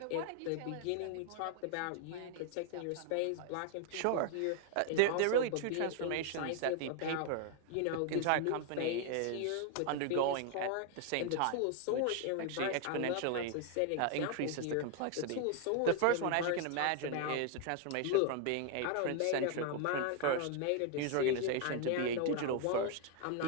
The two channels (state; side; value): different; both; correlation 0.00